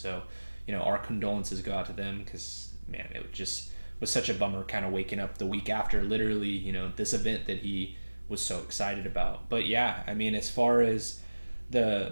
our condolences go out to them because, man, it just was such a bummer kind of waking up the week after literally this event that he was so excited about. But yeah, I mean, as far as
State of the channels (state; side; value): inverted; both; correlation -1.00